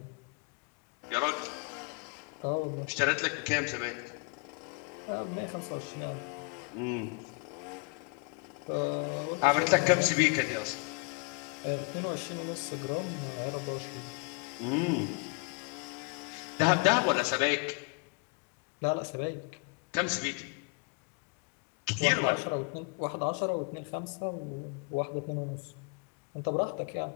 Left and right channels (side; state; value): right; quieter; 32.7 dB